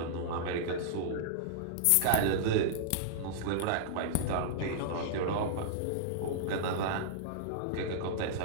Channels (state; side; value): different; both; correlation -0.02